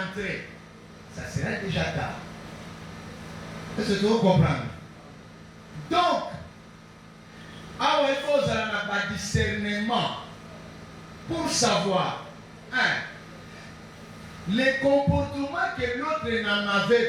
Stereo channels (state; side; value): identical; both; correlation 1.00